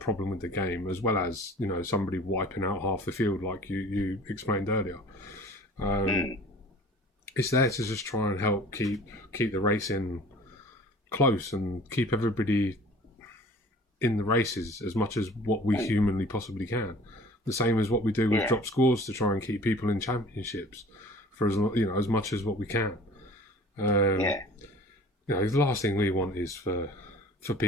with the game, as well as somebody wiping out half the field, like you explained earlier. It's there to just try and help keep the racing close and keep everybody in the races as much as what we humanly possibly can. The same as what we do with drop scores to try and keep people in championships for as much as what we can. The last thing we want is for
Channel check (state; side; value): normal; both; correlation 0.47